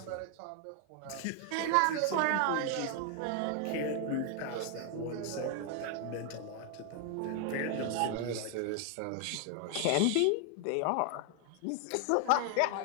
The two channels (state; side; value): different; both; correlation 0.00